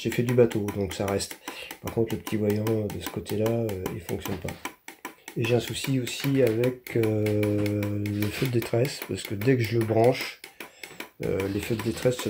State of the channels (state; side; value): identical; both; correlation 1.00